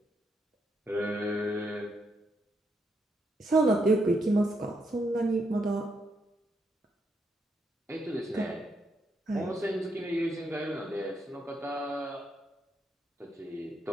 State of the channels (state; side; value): normal; both; correlation 0.79